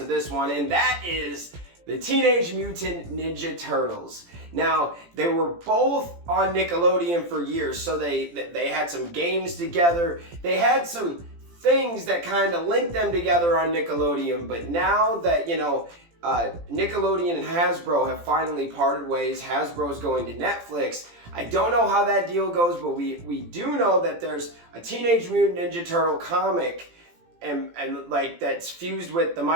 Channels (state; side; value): late; left; 17 ms